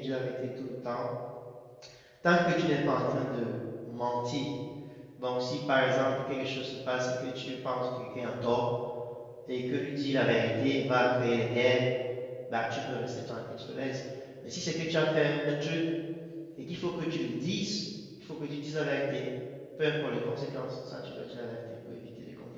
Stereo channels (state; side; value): identical; both; correlation 1.00